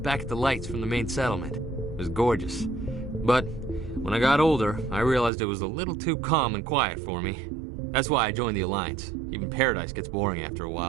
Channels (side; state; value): left; drops out; at 5.3 s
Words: at the lights from the main settlement. It was gorgeous. But when I got older, I realized it was a little too calm and quiet for me. That's why I joined the Alliance. Even Paradise gets boring after a